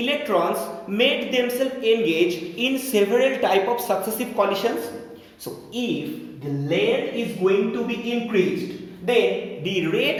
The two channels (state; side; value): identical; both; correlation 1.00